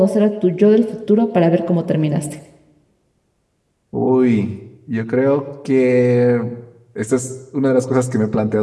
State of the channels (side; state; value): both; identical; correlation 1.00